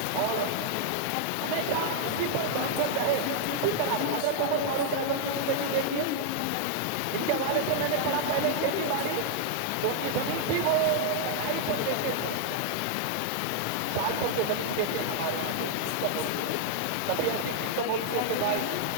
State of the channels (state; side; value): different; both; correlation -0.01